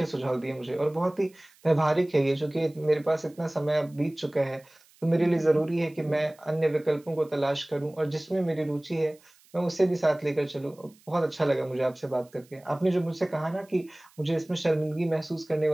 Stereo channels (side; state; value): right; noise; hiss, 29 dB below the sound